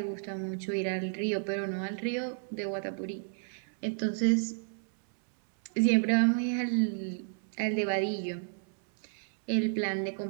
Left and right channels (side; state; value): left; silent; 57 dB below the other